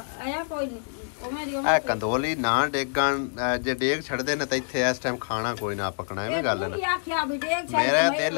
आया कोई नहीं आ कंदोली ना डेगन जे डेग छड़दे ने ते इथे इस टाइम खाना कोई ना पकना है गल ना आख्या भी डेग छड़ मेरा दिल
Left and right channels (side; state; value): right; silent; 59 dB below the other